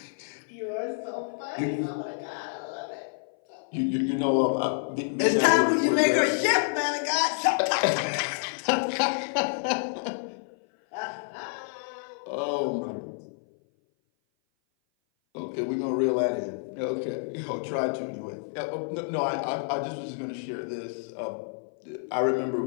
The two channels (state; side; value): silent; right; 57 dB below the other